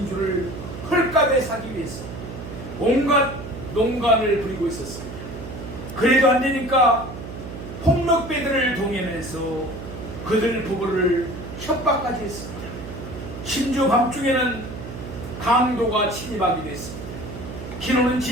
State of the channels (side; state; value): right; noise; hum, 10 dB below the sound